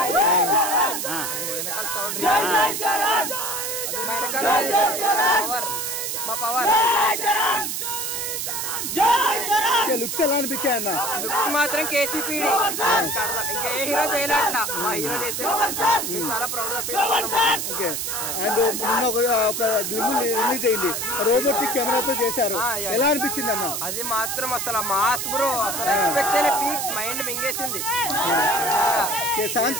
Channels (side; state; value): right; noise; hiss, 3 dB below the sound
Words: వెనకాల సౌండ్ పవర్ మా పవర్ లుక్స్ ఎలా అనిపించాయి అన్న? లుక్స్ మాత్రం కేసీపీడి ఇంకా ఏ హీరో చేయలేట్లా మా హీరో చేసే చాలా ప్రౌడ్ గా ఫీల్ అవుతున్నాం. ఓకే. అండ్ నిన్న ఒక గ్లిమ్ రిలీజ్ అయింది, రోబోటిక్ కెమెరాతో చేశారు, ఎలా అనిపించింది అన్న? అది మాత్రం అసలు మాస్ బ్రో, అసలు ఎక్స్పెక్ట్ చేయలే, పీక్స్ మైండ్ మింగేసింది.